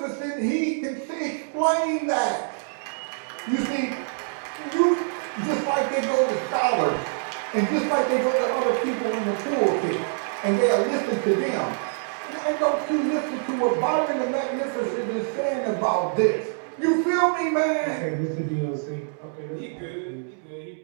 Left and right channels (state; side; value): silent; left; digital silence